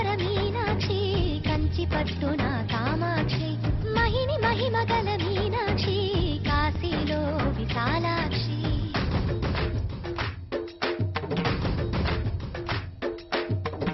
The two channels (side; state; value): both; identical; correlation 1.00